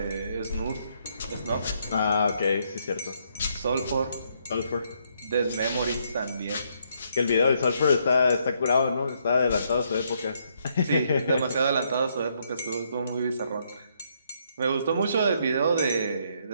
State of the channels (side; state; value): both; inverted; correlation -0.73